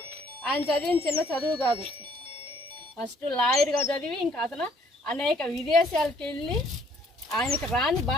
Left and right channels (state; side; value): normal; both; correlation 0.63